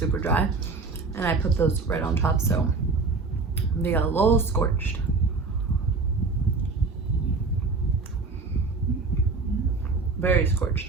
dry. And I put those right on top, so they got a little scorched. Very scorched.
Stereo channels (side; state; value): left; quieter; 4.1 dB